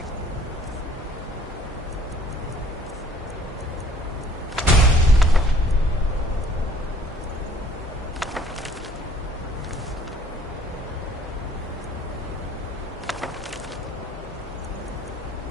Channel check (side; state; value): both; normal; correlation 0.57